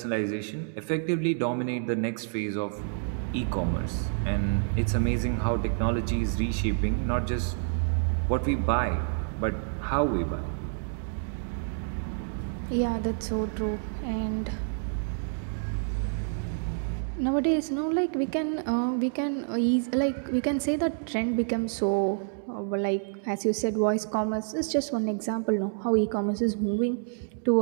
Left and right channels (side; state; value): left; silent; digital silence